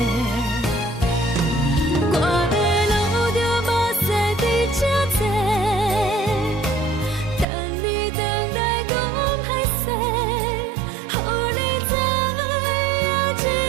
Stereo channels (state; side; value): drops out; left; at 7.5 s